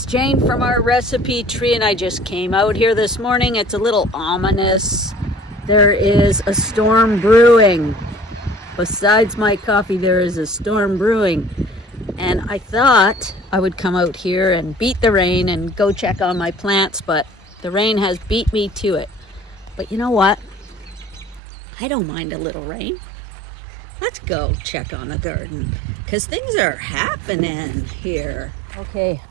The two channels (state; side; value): drops out; left; at 21.4 s